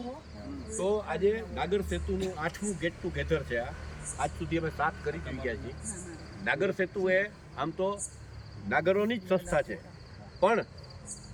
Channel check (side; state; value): both; identical; correlation 1.00